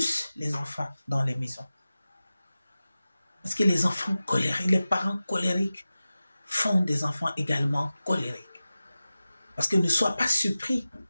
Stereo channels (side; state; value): both; inverted; correlation -0.95